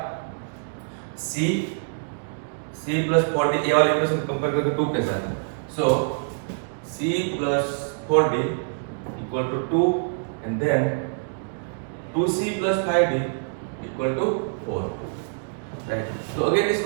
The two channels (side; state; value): left; silent; digital silence